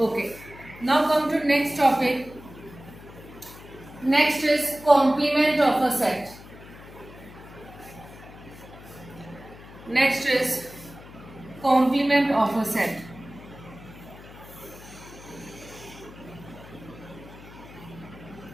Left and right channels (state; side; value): noise; left; hum, 18 dB below the sound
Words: Now come to next topic. Next is complement of a set. Next is complement of a set.